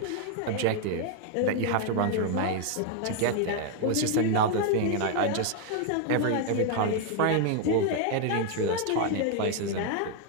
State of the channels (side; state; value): both; different; correlation 0.01